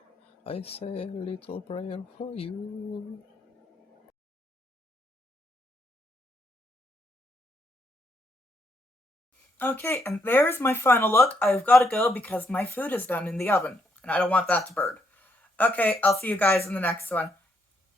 I say a little prayer for you. Okay, and there's my final look. I've got to go because my food is done in the oven, and I don't want that to burn. Okay, I'll see you guys in the next one.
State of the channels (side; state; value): both; normal; correlation 0.75